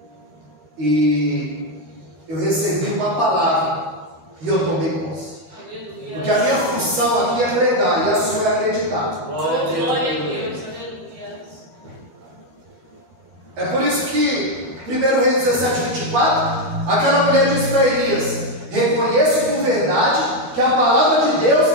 e eu recebi uma palavra e eu tomei posse. Porque a minha função aqui é pregar e a sua é acreditar. Glória a Deus. É por isso que 1 Reis 17, 24 Aquela mulher disse para Elias: reconheço por verdade que a palavra de Deus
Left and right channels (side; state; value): left; late; 12 ms